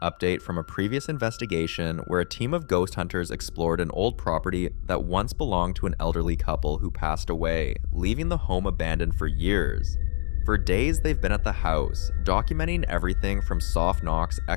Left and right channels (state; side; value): silent; right; digital silence